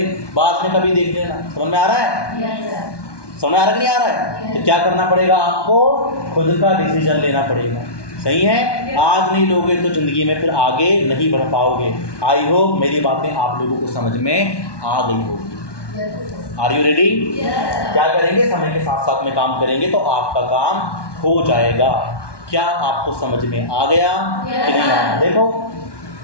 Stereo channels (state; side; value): late; right; 1.2 ms